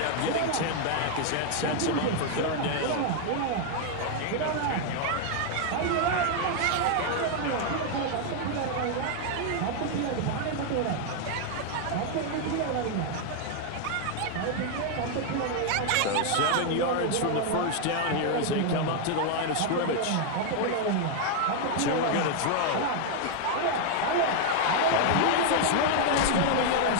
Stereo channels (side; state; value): both; different; correlation 0.00